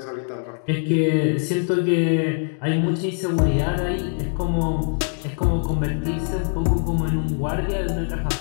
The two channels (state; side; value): silent; right; 59 dB below the other